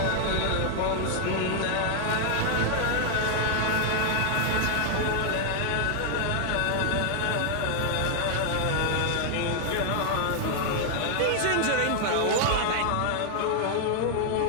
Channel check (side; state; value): both; different; correlation 0.00